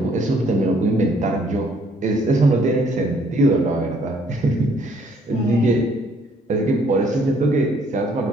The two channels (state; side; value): normal; both; correlation 0.64